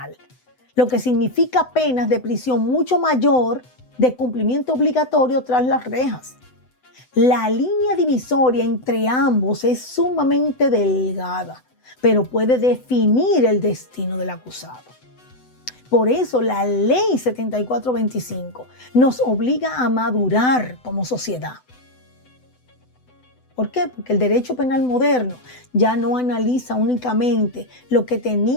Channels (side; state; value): right; late; 7.9 ms